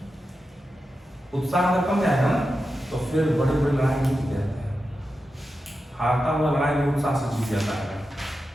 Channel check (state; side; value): normal; both; correlation 0.90